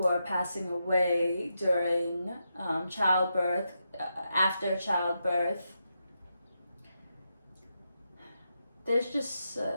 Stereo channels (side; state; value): both; inverted; correlation -0.85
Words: are passing away during childbirth, after childbirth. There's just